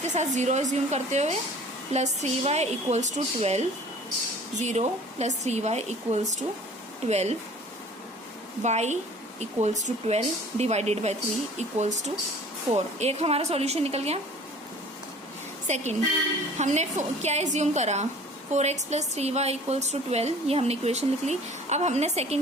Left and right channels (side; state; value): both; normal; correlation 0.48